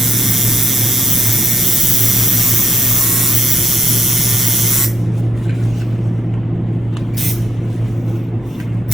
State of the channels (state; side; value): normal; both; correlation 0.72